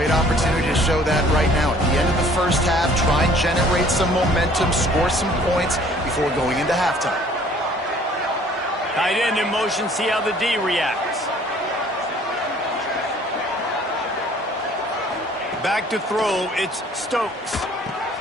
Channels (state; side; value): normal; both; correlation 0.55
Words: opportunity to show that right now. At the end of the first half, try and generate some momentum, score some points before going into halftime. Tight end in motion, see how the D reacts. Back to throw, it's Stokes.